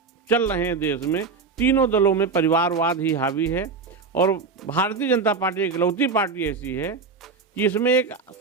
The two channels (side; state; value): left; quieter; 4.8 dB